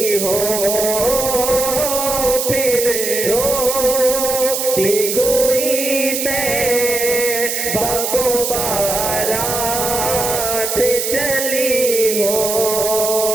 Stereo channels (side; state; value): right; noise; hiss, 2 dB below the sound